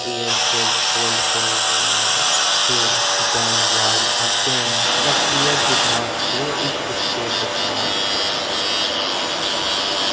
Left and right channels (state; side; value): identical; both; correlation 1.00